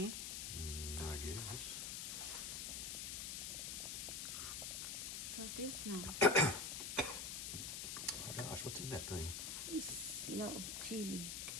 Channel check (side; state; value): left; noise; hiss, 3 dB below the sound